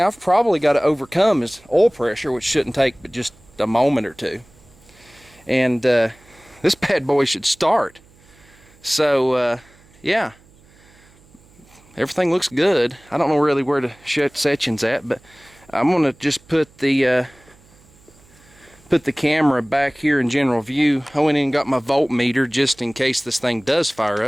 I've probably got to overcome is oil pressure, which shouldn't take but just a moment or two. And this bad boy should start. So yeah, everything looks good. I don't know really where the section's at, but I'm gonna just put the camera back here in general view. I went in and got my voltmeter just in case this thing does fire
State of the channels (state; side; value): noise; right; hum, 28 dB below the sound